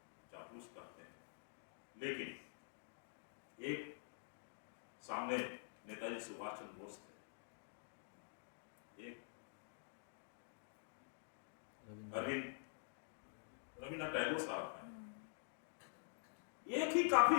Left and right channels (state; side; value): silent; right; digital silence